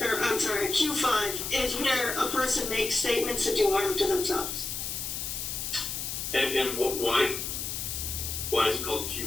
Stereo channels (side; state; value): left; noise; hiss, 4 dB below the sound